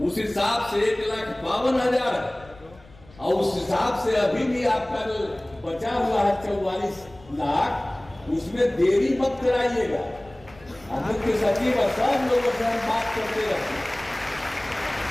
उस हिसाब से 1,52,000 है, और उस हिसाब से अभी भी आपका जो बचा हुआ है 44 लाख, उसमें देरी मत कराइएगा। मुख्य सचिव और सब लोगों से हम बात करते रहते हैं,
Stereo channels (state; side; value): noise; left; rumble, 24 dB below the sound